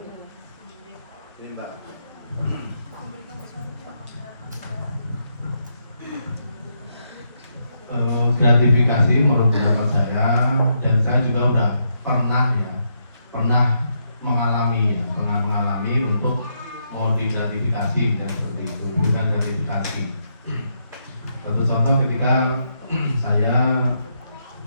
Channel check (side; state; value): both; inverted; correlation -0.79